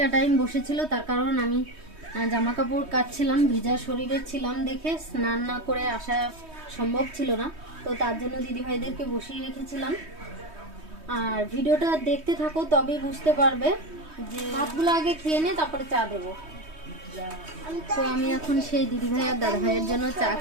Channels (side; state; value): left; late; 3.2 ms